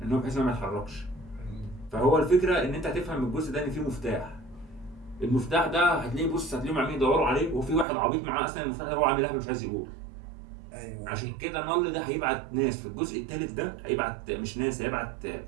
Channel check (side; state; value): left; drops out; at 7.9 s